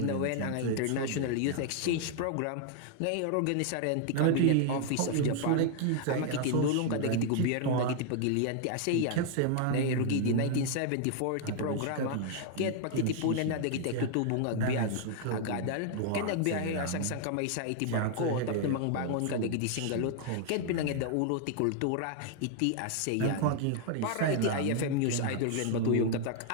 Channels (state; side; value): different; both; correlation 0.00